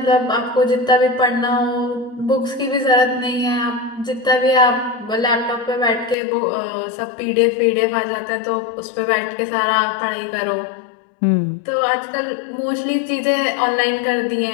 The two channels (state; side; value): drops out; right; at 6.2 s